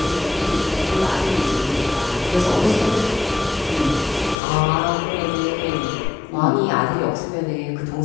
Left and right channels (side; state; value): right; drops out; at 4.4 s